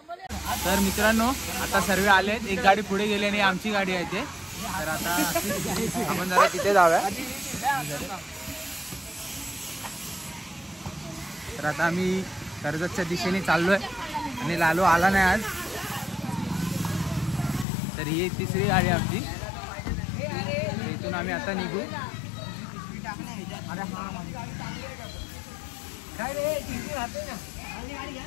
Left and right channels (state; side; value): drops out; right; at 17.7 s